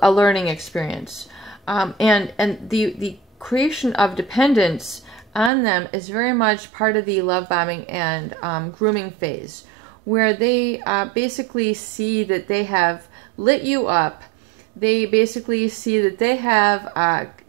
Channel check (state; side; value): drops out; left; at 5.5 s